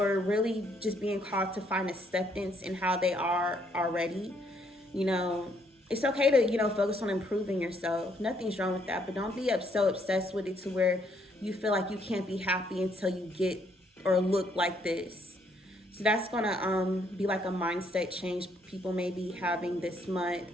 just being called to find acceptance in how they are already. It's okay to focus on improving yourself. Nothing's wrong with that, but don't be so obsessed with it to where you feel like you can't be happy until you get or look like this. So that's gonna be a mindset change people may be having this month,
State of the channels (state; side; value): normal; both; correlation 0.70